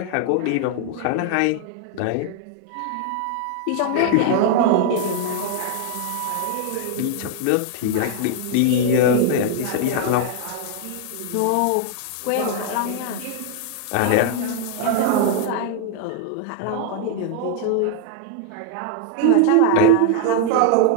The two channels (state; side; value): different; both; correlation 0.00